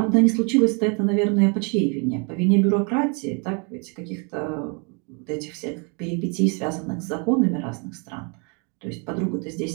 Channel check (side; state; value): left; quieter; 34.9 dB